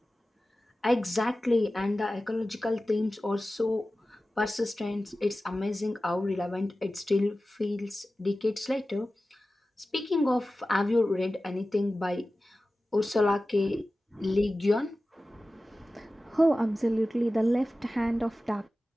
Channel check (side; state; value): both; normal; correlation 0.95